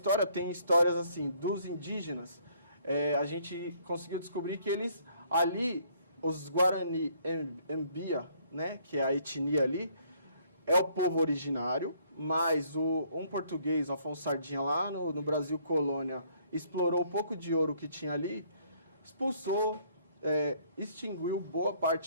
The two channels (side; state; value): both; inverted; correlation -0.64